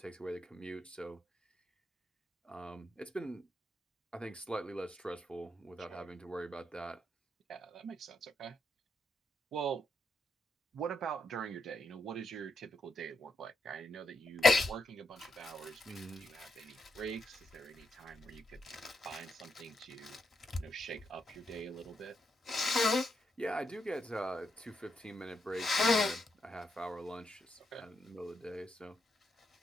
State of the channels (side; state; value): both; normal; correlation 0.80